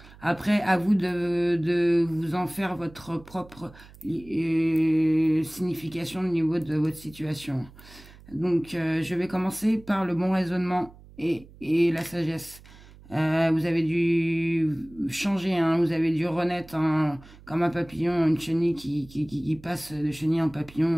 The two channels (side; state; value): right; noise; hum, 22 dB below the sound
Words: Après, à vous de vous en faire votre propre signification au niveau de votre situation. Donc, je vais commencer par le bon raisonnement et la sagesse. Vous avez dû changer, hein, vous avez dû renaître, hein, comme un papillon, une chenille qui passe de chenille en